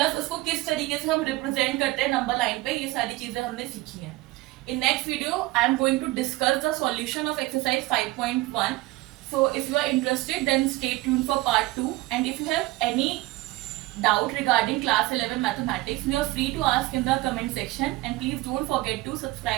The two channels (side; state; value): left; quieter; 19.5 dB